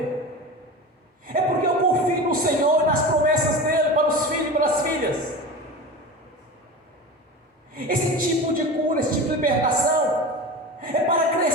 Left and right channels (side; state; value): both; normal; correlation 0.30